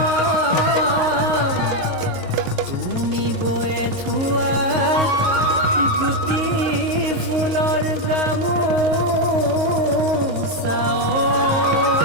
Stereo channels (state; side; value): late; left; 22 ms